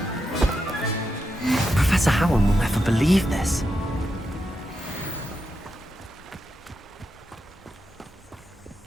Professor Howard will never believe this.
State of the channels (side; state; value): both; normal; correlation 0.86